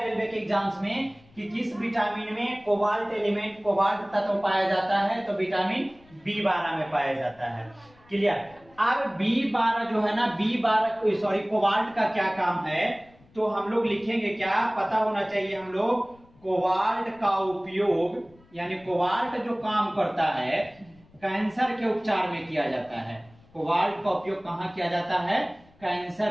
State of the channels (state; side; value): noise; left; rumble, 28 dB below the sound